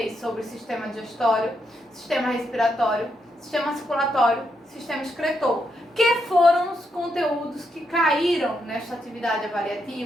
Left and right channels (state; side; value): normal; both; correlation 0.80